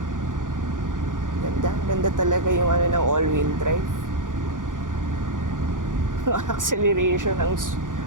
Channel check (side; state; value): left; late; 0.88 ms